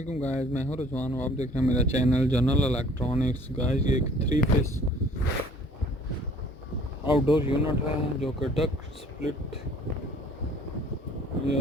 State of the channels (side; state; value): both; normal; correlation 0.54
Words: गाइस, मैं हूं रिजवान और आप देख रहे हैं मेरा चैनल जनरल इलेक्ट्रॉनिक्स। गाइस ये एक 3 फेस आउटडोर यूनिट है जो कि डक